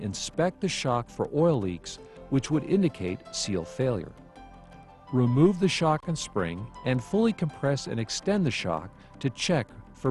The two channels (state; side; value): identical; both; correlation 1.00